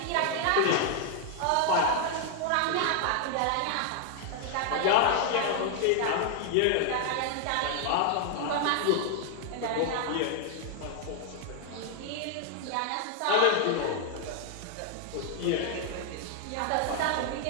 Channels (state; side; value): different; both; correlation 0.00